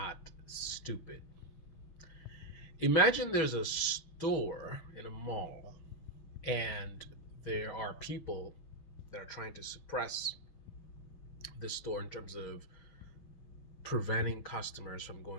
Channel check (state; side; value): late; right; 6.1 ms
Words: stupid. Imagine there's a store in a mall and there are people that are trying to suppress the store in terms of preventing customers from